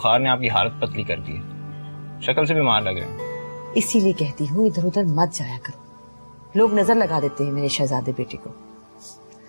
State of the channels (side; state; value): both; inverted; correlation -1.00